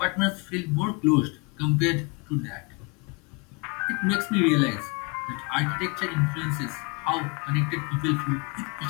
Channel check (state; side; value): quieter; right; 30.6 dB